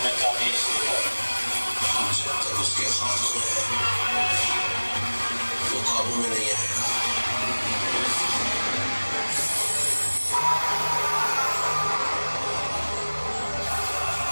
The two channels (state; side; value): inverted; both; correlation -1.00